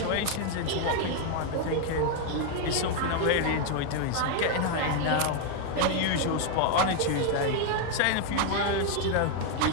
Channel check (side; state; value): both; different; correlation 0.01